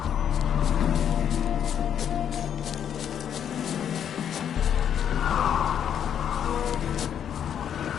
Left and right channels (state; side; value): quieter; right; 9.0 dB